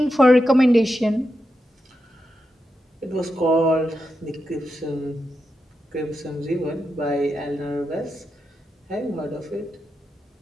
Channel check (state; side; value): normal; both; correlation 0.87